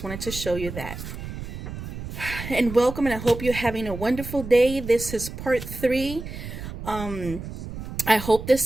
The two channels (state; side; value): noise; right; rumble, 9 dB below the sound